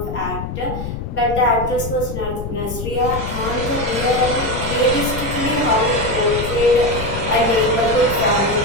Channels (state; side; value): noise; left; rumble, 6 dB below the sound